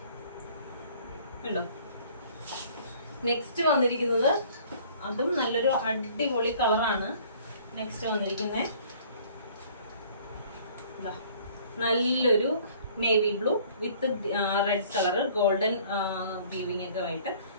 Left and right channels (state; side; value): inverted; both; correlation -0.54